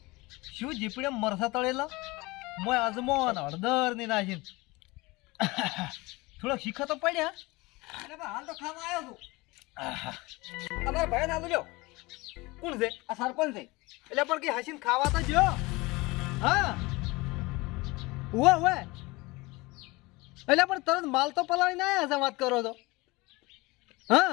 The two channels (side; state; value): right; quieter; 22.9 dB